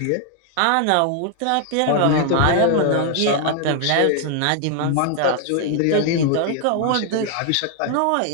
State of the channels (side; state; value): both; different; correlation 0.00